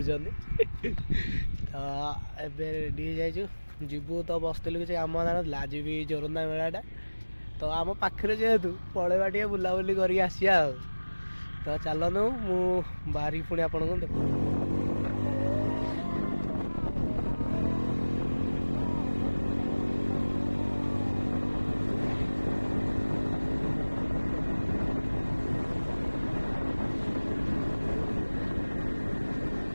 तो एबे रेडी जाइचु जीवु तो बसलु किसी कम ना आज भी जोरंदा मेलाटा तो आम पाखे जेहेतु पलैबा टे बुलाबुली करके आसिया तो चलनु मु बाहरी पुणी आपन को देख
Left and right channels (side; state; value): both; inverted; correlation -1.00